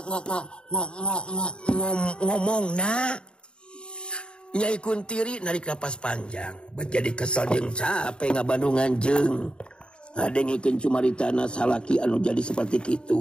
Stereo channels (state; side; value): late; right; 0.052 ms